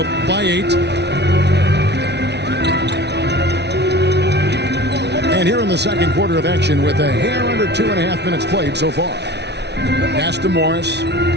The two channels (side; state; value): left; late; 0.50 ms